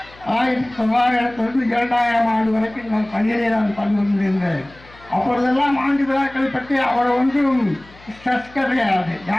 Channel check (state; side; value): noise; left; hum, 24 dB below the sound